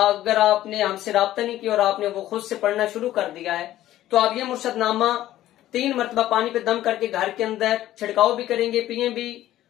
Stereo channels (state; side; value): quieter; right; 13.8 dB